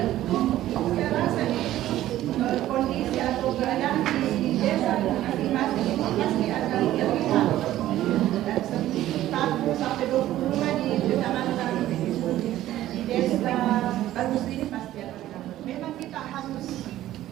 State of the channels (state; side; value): quieter; left; 13.9 dB